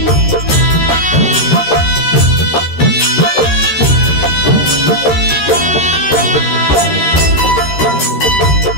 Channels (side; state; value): right; late; 13 ms